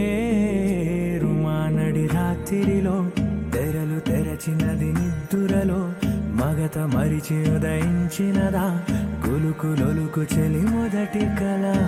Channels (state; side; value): identical; both; correlation 1.00